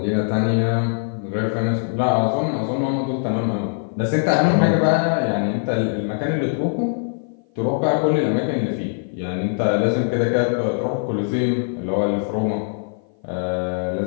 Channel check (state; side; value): silent; right; 56 dB below the other